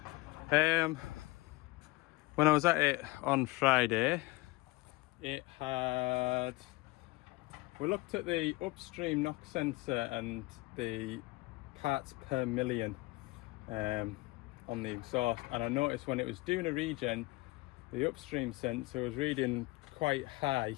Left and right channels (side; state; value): right; quieter; 22.0 dB